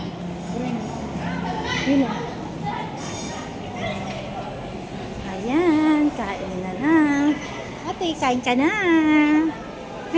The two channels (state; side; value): identical; both; correlation 1.00